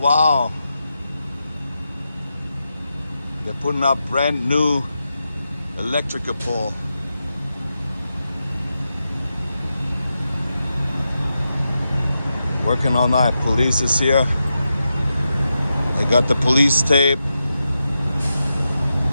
wow. They're putting up brand new electrical pole. Working all night. Police is here. They got the police tape.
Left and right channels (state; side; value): inverted; both; correlation -0.89